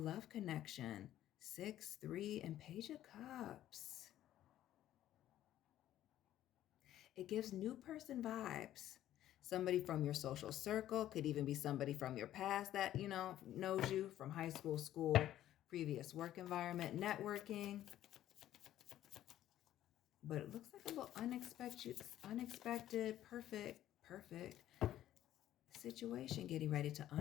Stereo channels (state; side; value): quieter; right; 12.7 dB